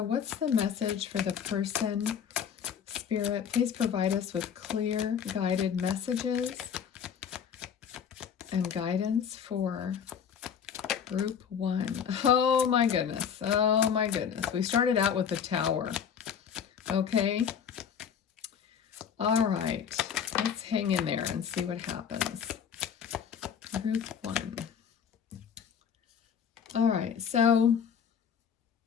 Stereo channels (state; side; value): quieter; right; 7.6 dB